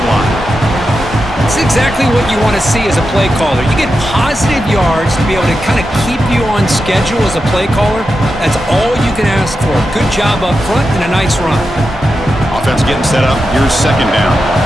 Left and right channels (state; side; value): normal; both; correlation 0.89